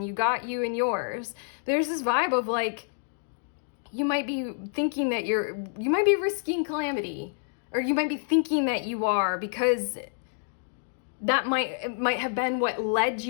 you got you and yours. There's this vibe of like, you might be thinking that you might be risking calamity, or you might be thinking that you are, because that might have been what led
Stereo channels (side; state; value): right; silent; digital silence